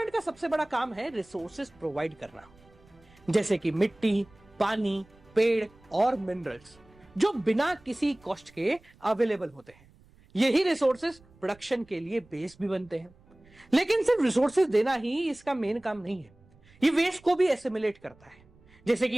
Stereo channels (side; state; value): right; noise; rumble, 28 dB below the sound